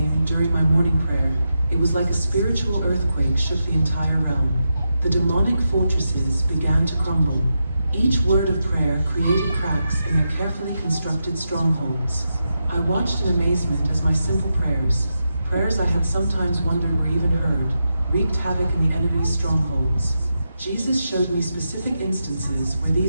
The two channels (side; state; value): both; inverted; correlation -0.87